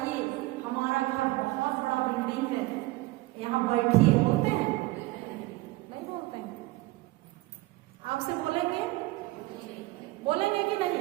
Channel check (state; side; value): quieter; left; 20.3 dB